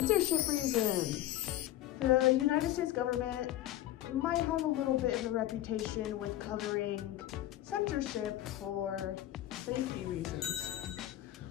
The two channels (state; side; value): quieter; right; 13.9 dB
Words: reasons. The United States government might have a little bit of a reputation with covering censorship for safety reasons.